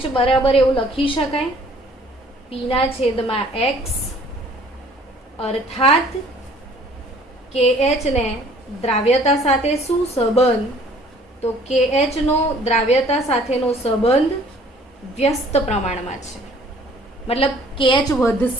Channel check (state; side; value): normal; both; correlation 0.55